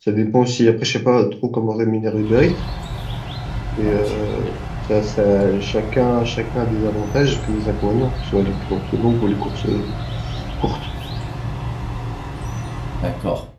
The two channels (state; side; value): identical; both; correlation 1.00